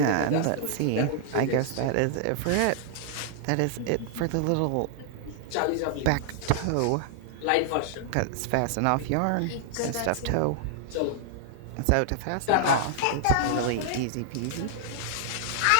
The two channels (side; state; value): both; different; correlation -0.01